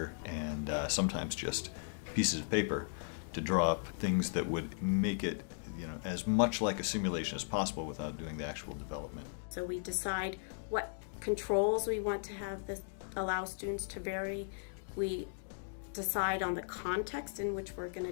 and sometimes just pieces of paper to draw up things that would make it as much like a simulation as possible without doing the actual development. So we decide what controls we want to have that allow students to vary. We decide on the context in which we're going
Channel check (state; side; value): silent; right; digital silence